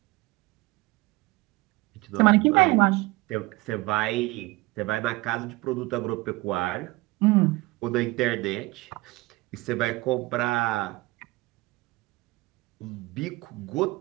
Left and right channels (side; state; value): left; quieter; 21.7 dB